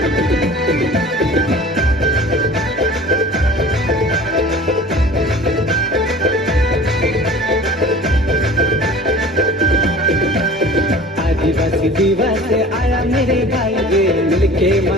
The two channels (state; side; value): normal; both; correlation 0.43